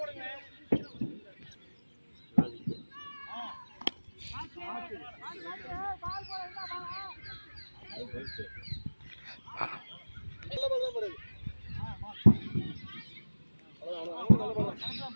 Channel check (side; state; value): both; inverted; correlation -1.00